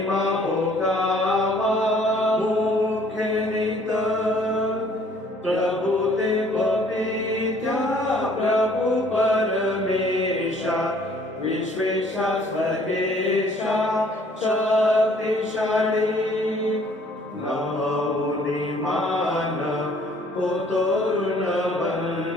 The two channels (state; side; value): normal; both; correlation 0.58